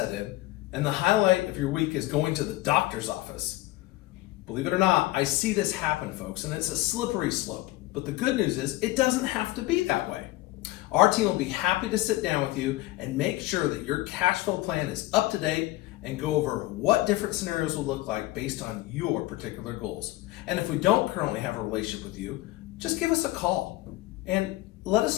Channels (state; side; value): quieter; right; 18.0 dB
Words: in, and the highlight of your week is going to the doctor's office. Believe it or not, I see this happen, folks, and it's a slippery slope. But the good news is it doesn't have to be that way. Our team will be happy to sit down with you and make sure that your cash flow plan is up to date and go over what different scenarios will look like based on your particular goals. And if we don't currently have a relationship with you, just give us a call and let